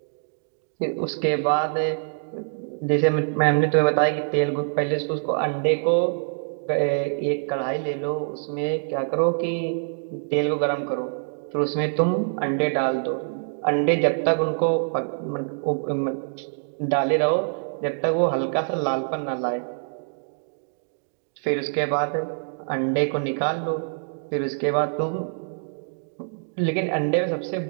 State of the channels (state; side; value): silent; left; digital silence